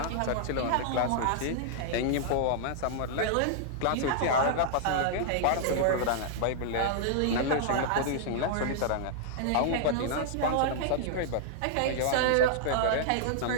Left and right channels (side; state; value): both; different; correlation -0.01